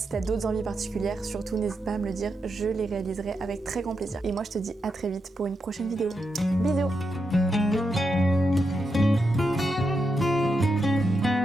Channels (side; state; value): both; normal; correlation 0.85